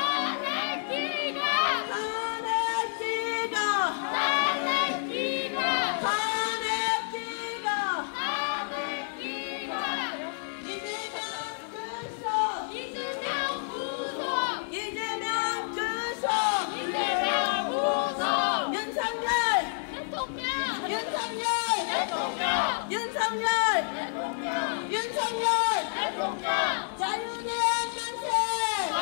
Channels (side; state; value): right; silent; 59 dB below the other